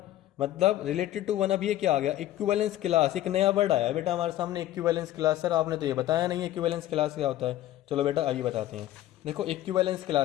मतलब रिलेटेड टू 1। अब ये क्या आ गया, इक्विवेलेंस क्लास, एक नया वर्ड आया बेटा हमारे सामने, इक्विवेलेंस क्लास। सर आपने तो ये बताया नहीं इक्विवेलेंस क्लास क्या होता है। चलो बेटा आइए बताते हैं। देखो इक्विवेलेंस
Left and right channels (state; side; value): quieter; right; 13.9 dB